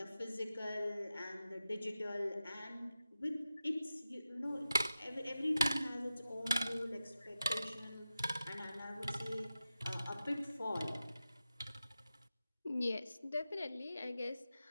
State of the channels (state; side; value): inverted; both; correlation -0.92